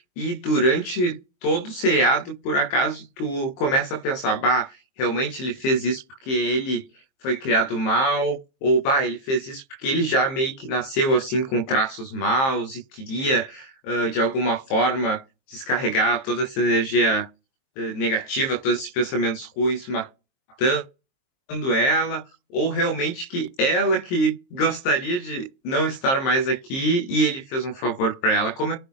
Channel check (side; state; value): right; late; 23 ms